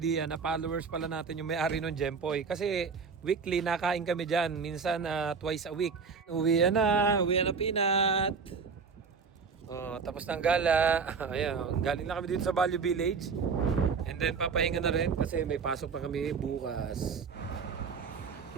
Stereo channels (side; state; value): left; quieter; 5.4 dB